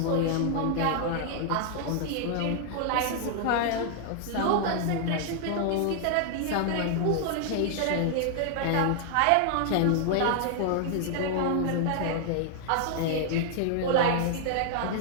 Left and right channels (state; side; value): different; both; correlation 0.00